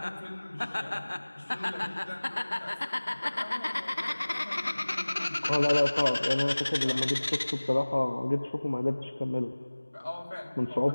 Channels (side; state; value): both; inverted; correlation -1.00